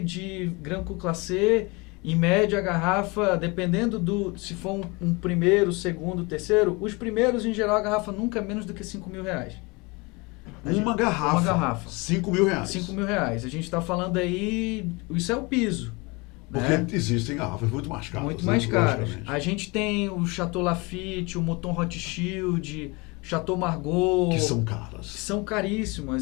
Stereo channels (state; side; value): quieter; right; 26.9 dB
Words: Grand Cru Classé, em média a garrafa, dependendo se for um primeiro, segundo, terceiro, os primeiros, em geral, a garrafa nunca é menos do que R$5.000. Uma garrafa. R$5.000. R$5.000. R$5.000. A gente está falando aí, isso é o piso. Porque né? existem garrafas muito mais caras. Muito mais caras. Logicamente. A gente tem o Chateau Lafite, o Mouton Hot Shield, Chateau Margaux. Que são caras. São